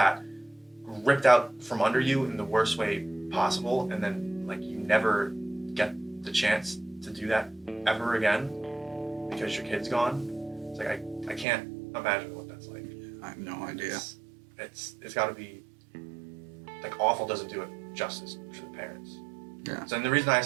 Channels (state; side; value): drops out; left; at 11.5 s